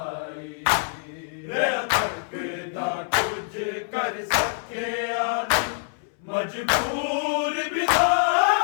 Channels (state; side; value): silent; right; 62 dB below the other